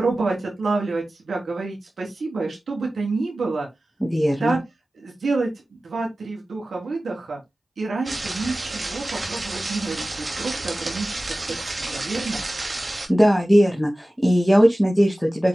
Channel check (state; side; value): normal; both; correlation 0.96